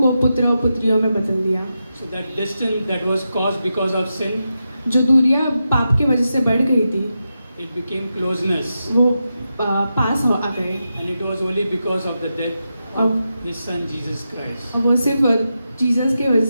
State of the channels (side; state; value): both; inverted; correlation -0.88